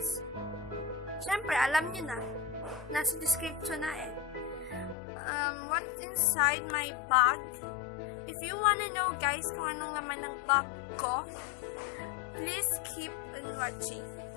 syempre, alam nyo na. Nasa description na eh. What's inside my bag. If you wanna know guys kung anong laman ng bag ko, please keep on watching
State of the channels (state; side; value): drops out; right; at 5.0 s